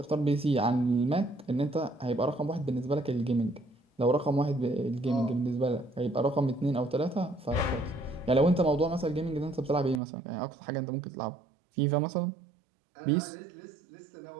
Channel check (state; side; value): drops out; left; at 10.0 s